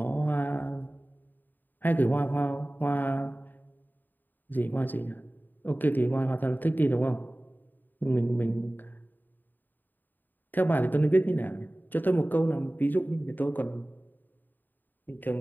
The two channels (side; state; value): right; late; 0.089 ms